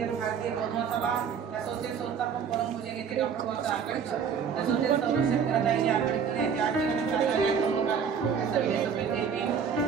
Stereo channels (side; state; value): left; quieter; 6.9 dB